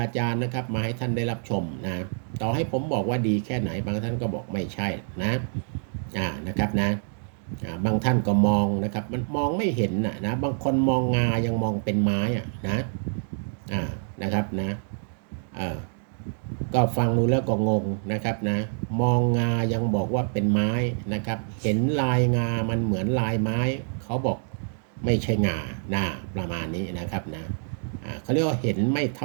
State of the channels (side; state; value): left; silent; digital silence